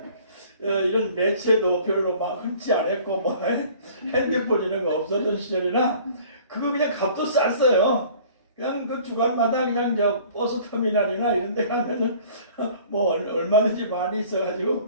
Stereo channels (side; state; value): both; inverted; correlation -0.50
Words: 이런 매체도 별로 막 흔치 않았고 뭐 핸드폰 이런 거 없었던 시절이라 그거 그냥 값도 쌌어요. 그냥 그 주간마다 그냥 저 버스 터미널이나 이런 데 가면은 뭐 얼마든지 많이